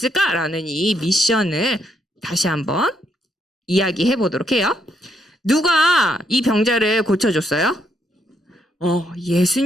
이 미션을 다시 한번 이야기해 보도록 해요. 누가 이 병자를 고쳐줬어요?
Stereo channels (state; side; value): normal; both; correlation 0.75